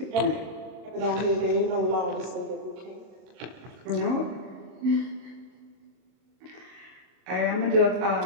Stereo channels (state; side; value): late; left; 38 ms